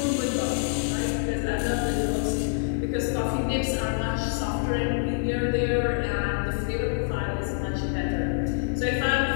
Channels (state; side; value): silent; right; digital silence